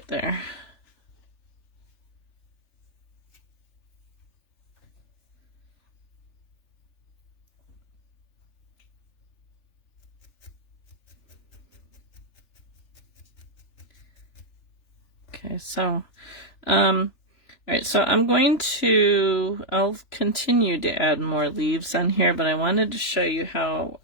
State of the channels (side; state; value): right; late; 3.4 ms